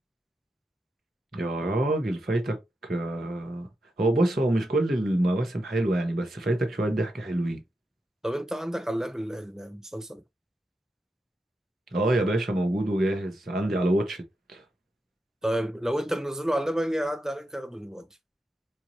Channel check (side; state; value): both; normal; correlation 0.86